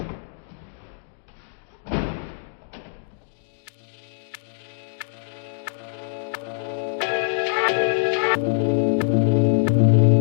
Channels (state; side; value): silent; right; digital silence